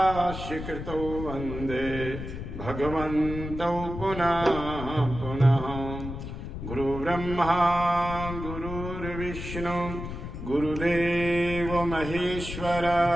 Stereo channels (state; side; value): noise; left; rumble, 8 dB below the sound